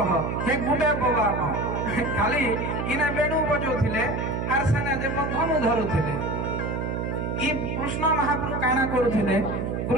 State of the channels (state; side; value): noise; right; hum, 2 dB below the sound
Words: हे गुटे बाबा न। खाली इने बेणु बजौथिले आर सेना जे मधनु धरुथिले। ई कृष्ण महाप्रभु काना करूथिले,